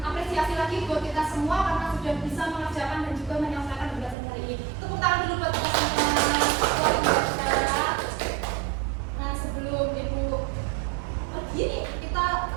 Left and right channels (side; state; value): left; drops out; at 4.2 s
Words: lagi buat kita semua karena sudah bisa mengerjakan dan juga menyelesaikan pembelajaran hari ini. Tepuk tangan dulu buat kita semua. Luar biasa. Nah, sebelum Ibu pergi nih, kita